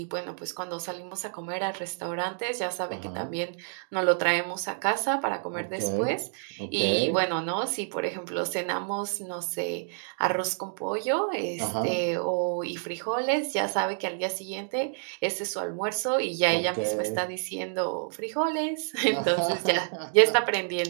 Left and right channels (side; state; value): left; silent; digital silence